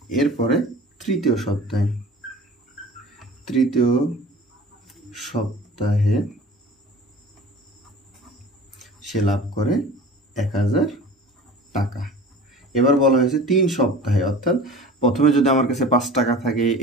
এরপরে তৃতীয় সপ্তাহে সে লাভ করে 1000 টাকা। এবার বলা হয়েছে 3 সপ্তাহে, অর্থাৎ প্রথমে যদি আমার কাছে 5 টাকা থাকে,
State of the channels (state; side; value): normal; both; correlation 0.41